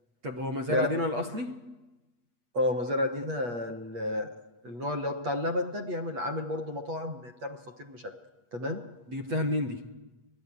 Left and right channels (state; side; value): late; left; 8.3 ms